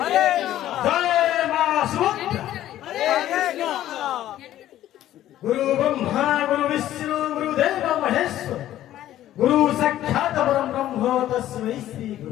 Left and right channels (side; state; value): right; quieter; 13.0 dB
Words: হরে জয় মা সুভদ্রা হরে কৃষ্ণ गुरु ब्रह्मा गुरु विष्णु गुरुदेव महेश्वर गुरु साक्षात् परम ब्रह्म तस्मै श्री